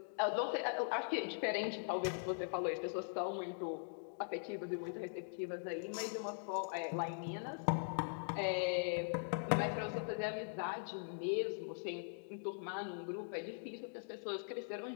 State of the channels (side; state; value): right; silent; digital silence